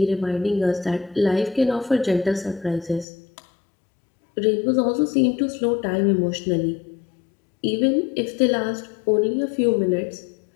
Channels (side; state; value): right; drops out; at 3.1 s